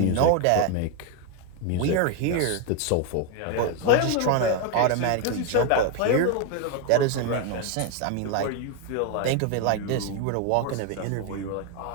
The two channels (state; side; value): different; both; correlation 0.01